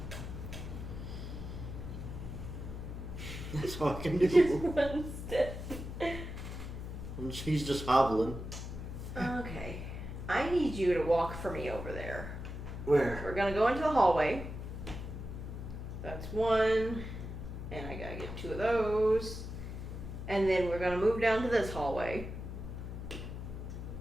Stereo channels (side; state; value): left; noise; hum, 7 dB below the sound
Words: That's all I can Just do. one step. She's just hobbling. Okay. I need you to walk for me over there. Where? We're gonna go into the hallway. That's one. And I gotta get 2 of those. And then we're gonna move down to this hallway.